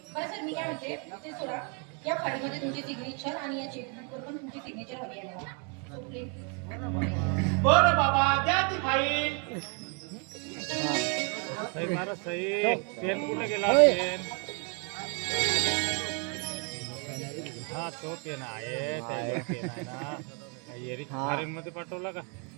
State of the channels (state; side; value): quieter; left; 36.6 dB